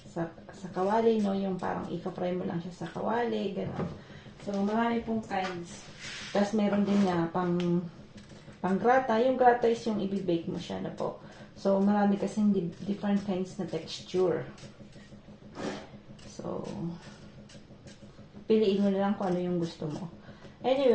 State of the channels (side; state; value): both; identical; correlation 1.00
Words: kawali, no? Yung parang ika-fry mo lang siya sa kawali, gano'n. So, marami pong kinds. Tapos, meron din nga pang grata. Yung grata is yung i-bake mo siya na po. So, marami kasing different kinds na texture. So, piliin mo na lang kung ano yung gusto mo.